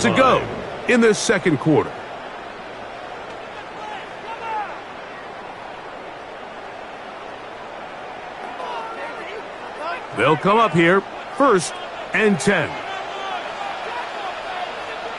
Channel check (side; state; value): both; identical; correlation 1.00